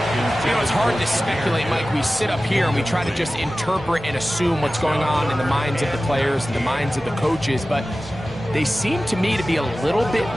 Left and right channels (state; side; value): normal; both; correlation 0.96